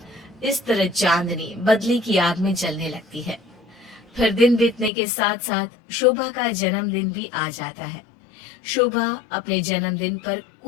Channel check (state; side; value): drops out; right; at 4.9 s